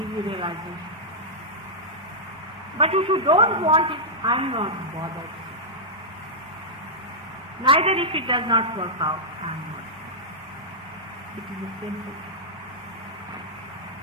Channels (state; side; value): normal; both; correlation -0.10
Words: you realization. But if you don't want it, I am not bothered. Neither if it does not work out, I am not. It is a simple.